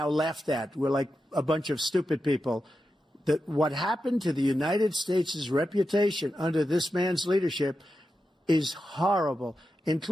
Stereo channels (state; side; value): normal; both; correlation 0.89